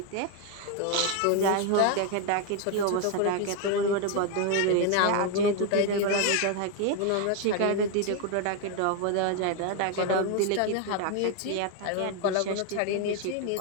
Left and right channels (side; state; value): both; different; correlation 0.01